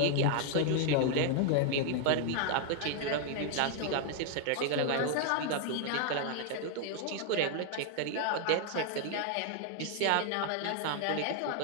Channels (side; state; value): both; different; correlation 0.00